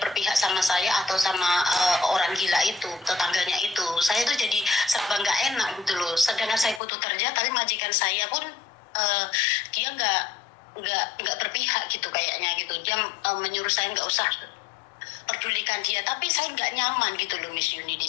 berpihak sama saya atau sama orang gila itu, tetangganya itu. Saya tuh jadi serba nggak enak gitu loh. Sedangkan saya butuh kerja, tapi majikan saya pun dia nggak berpihak gitu kayaknya gitu. Dia menyuruh saya nggak usah pedulikan dia, tapi saya nggak nyaman gitu loh Miss Yuni di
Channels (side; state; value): right; drops out; at 6.8 s